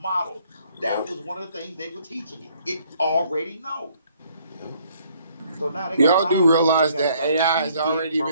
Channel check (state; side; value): inverted; both; correlation -0.64